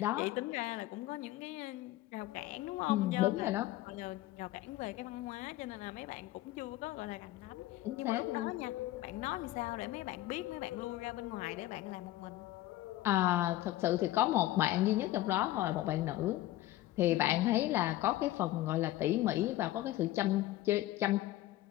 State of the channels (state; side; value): quieter; right; 15.7 dB